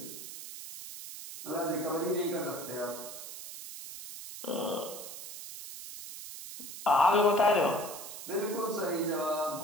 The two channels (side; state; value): right; noise; hiss, 11 dB below the sound